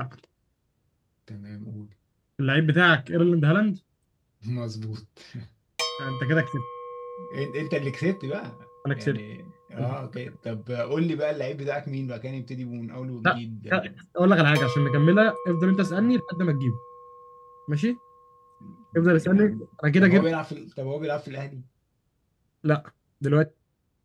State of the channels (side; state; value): both; identical; correlation 1.00